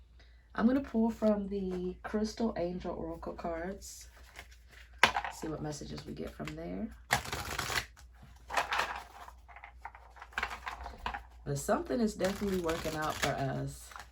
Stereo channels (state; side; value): identical; both; correlation 1.00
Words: I'm going to pull from the Crystal Angel Oracle cards. See what messages we get from there. But something is definitely working out for us.